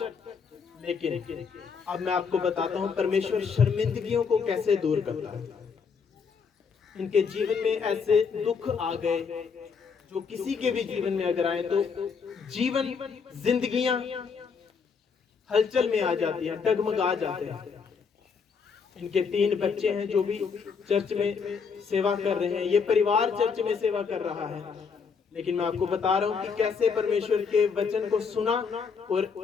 लेकिन अब मैं आपको बताता हूं परमेश्वर शर्मिंदगियों को कैसे दूर करता है। इनके जीवन में ऐसे दुख आ गए जो किसी के भी जीवन में अगर आए तो जीवन, जिंदगियां हलचल में आ जाती हैं, डगमगा जाते हैं। इनके 3 बच्चे हैं जो भी चर्च में सेवा कर रहे हैं, ये परिवार चर्च में सेवा कर रहा है। लेकिन मैं आपको बता रहा हूं कि कैसे परमेश्वर के वचन को सुना और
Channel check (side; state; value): right; quieter; 5.8 dB